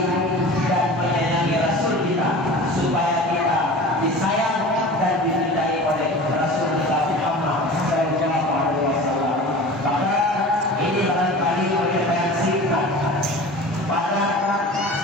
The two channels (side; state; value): both; normal; correlation 0.37